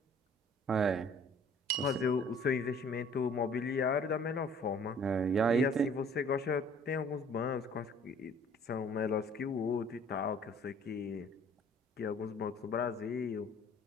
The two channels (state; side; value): normal; both; correlation 0.54